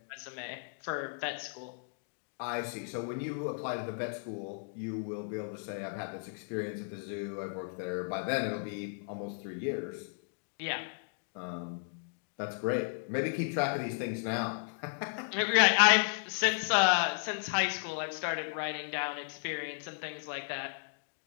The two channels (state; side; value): silent; right; digital silence